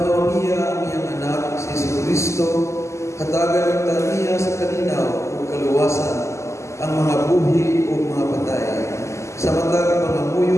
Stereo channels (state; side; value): late; right; 0.14 ms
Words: niya ang iyang anak, si Jesucristo, hatagan ang niya sa kalinaw ug kaluwasan, ang mga buhi ug mga patay. Sa matag